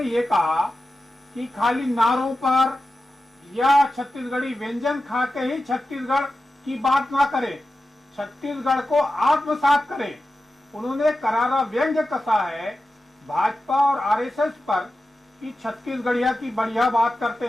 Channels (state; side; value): normal; both; correlation 0.92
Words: ये कहा कि खाली नारों पर या छत्तीसगढ़ी व्यंजन खा के ही छत्तीसगढ़ की बात ना करें, छत्तीसगढ़ को आत्मसात करें। उन्होंने करारा व्यंग्य कसा है भाजपा और आरएसएस पर कि छत्तीसगढ़िया की बढ़िया बात करते